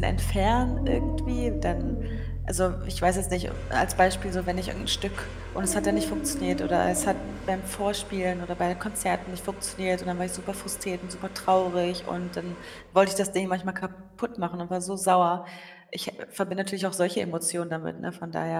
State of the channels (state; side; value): identical; both; correlation 1.00